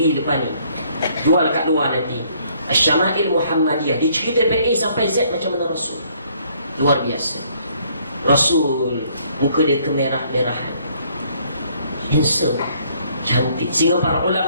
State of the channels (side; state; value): both; inverted; correlation -0.65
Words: depan ni, jual kat luar nanti. Syama'il Muhammadiyah dicerita dari A sampai Z macam mana Rasul. Luar biasa. Rasul muka dia kemerah-merahan, handsome, cantik, sehingga para